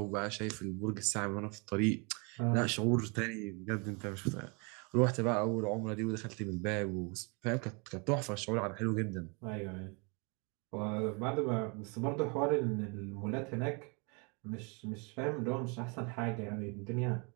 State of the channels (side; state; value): left; quieter; 32.9 dB